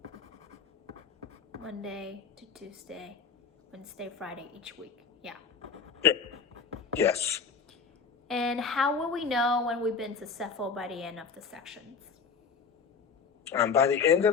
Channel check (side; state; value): right; quieter; 5.6 dB